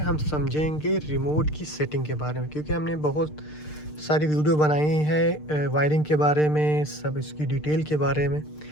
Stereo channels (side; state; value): right; late; 6.6 ms